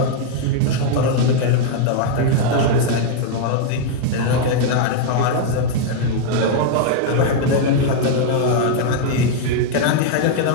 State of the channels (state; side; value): different; both; correlation 0.00